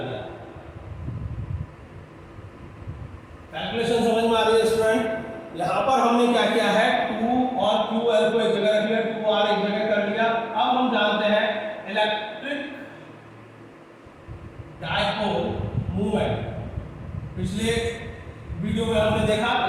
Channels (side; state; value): both; identical; correlation 1.00